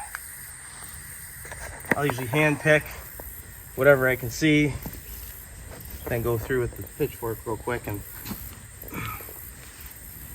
I'll usually hand pick whatever I can see, then go through with the pitchfork real quick and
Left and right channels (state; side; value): identical; both; correlation 1.00